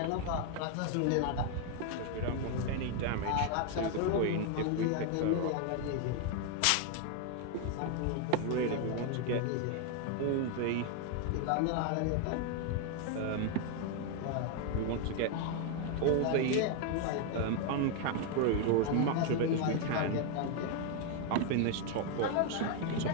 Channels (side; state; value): both; different; correlation 0.01